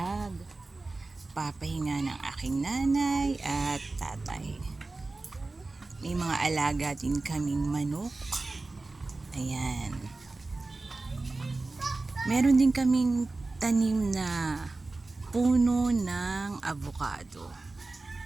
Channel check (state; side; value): quieter; left; 3.4 dB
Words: papahinga ng aking nanay at tatay. May mga alaga din kaming manok. Ayan. Meron din kaming tanim na puno ng avocado.